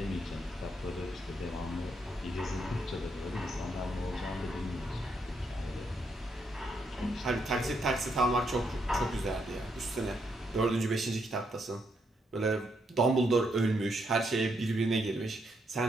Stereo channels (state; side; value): normal; both; correlation 0.77